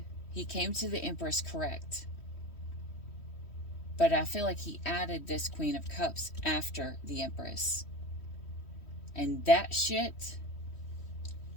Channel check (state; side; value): late; right; 3.1 ms